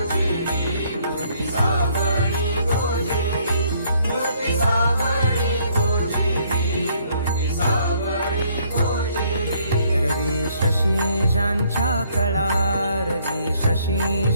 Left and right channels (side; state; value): both; inverted; correlation -0.66